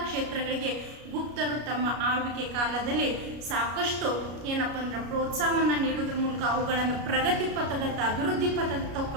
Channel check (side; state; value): left; late; 33 ms